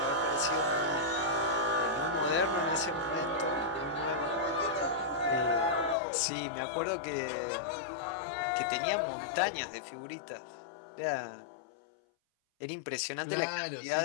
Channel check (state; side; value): drops out; right; at 6.0 s